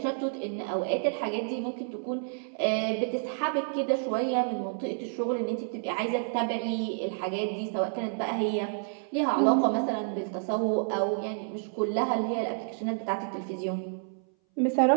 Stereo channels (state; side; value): silent; left; 58 dB below the other